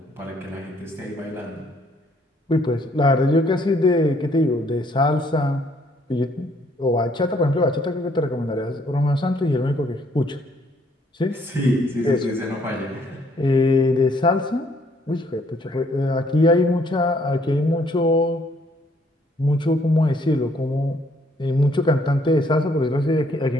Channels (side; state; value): both; normal; correlation 0.66